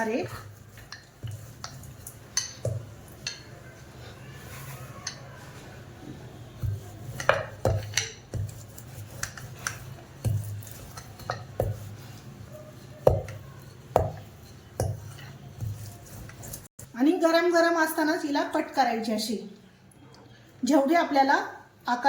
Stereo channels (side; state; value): both; identical; correlation 1.00